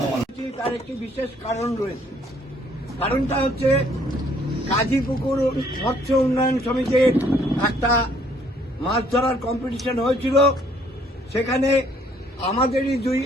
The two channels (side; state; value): both; normal; correlation 0.63